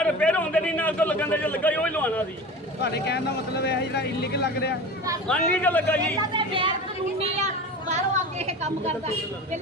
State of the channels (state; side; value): normal; both; correlation 0.33